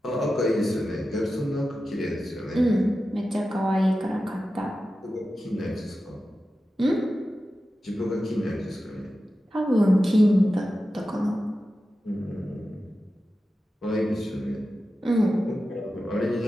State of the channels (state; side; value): normal; both; correlation 0.93